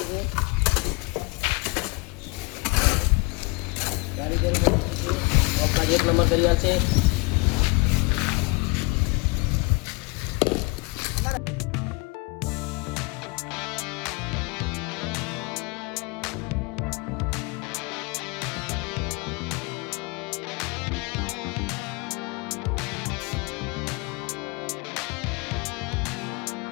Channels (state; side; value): quieter; right; 28.5 dB